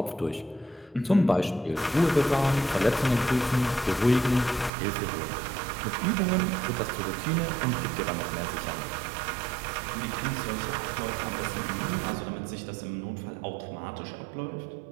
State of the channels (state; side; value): drops out; left; at 4.7 s